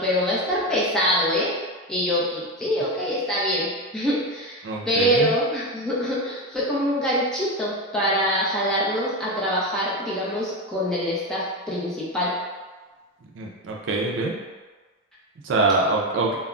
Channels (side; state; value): both; normal; correlation 0.16